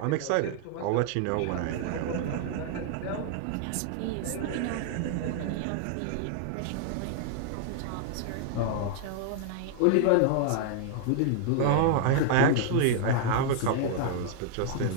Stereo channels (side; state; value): both; different; correlation -0.01